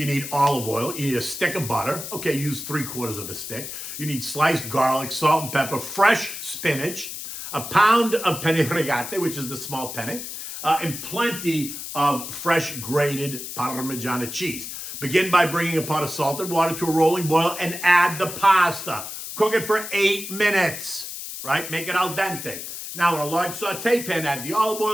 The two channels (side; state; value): left; noise; hiss, 8 dB below the sound